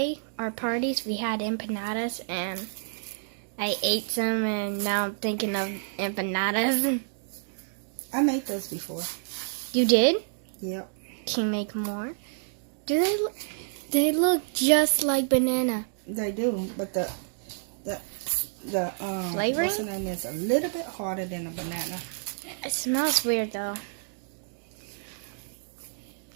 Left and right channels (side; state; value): left; silent; digital silence